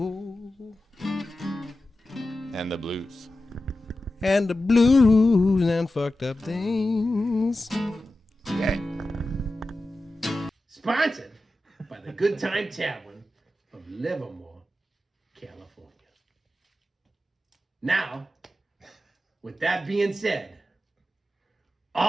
And the blues. And the blues and fucked up things. Okay. Sponsored by the Good Time Tavern of Livermore, California. Now, with that being said,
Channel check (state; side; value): normal; both; correlation 0.93